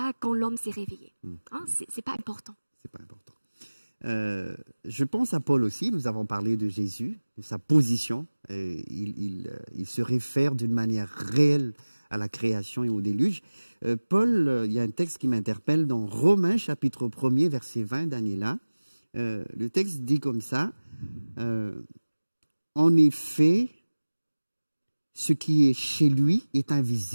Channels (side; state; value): both; inverted; correlation -1.00